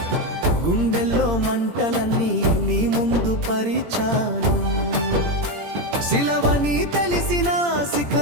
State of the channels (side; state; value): left; late; 17 ms